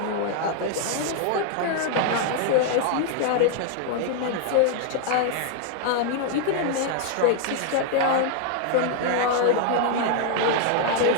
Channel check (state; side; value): different; both; correlation 0.00